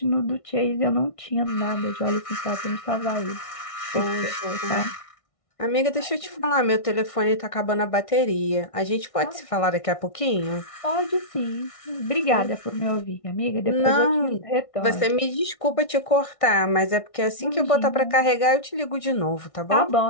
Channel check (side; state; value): right; late; 1.6 ms